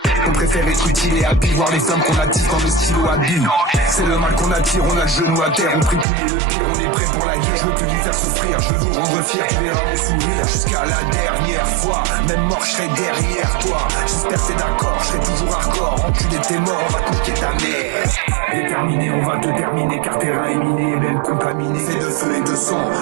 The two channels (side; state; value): left; drops out; at 6.1 s